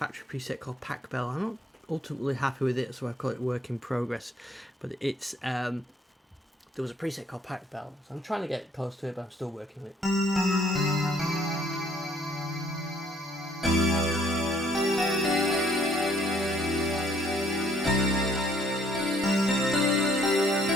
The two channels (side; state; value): both; normal; correlation 0.64